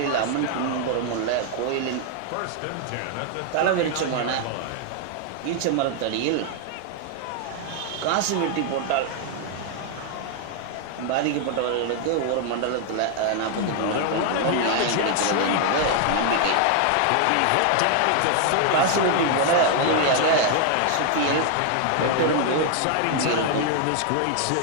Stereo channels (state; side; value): different; both; correlation 0.00